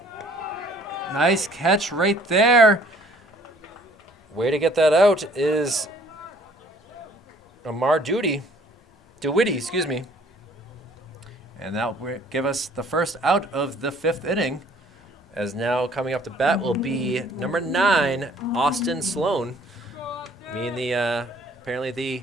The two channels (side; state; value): both; normal; correlation 0.57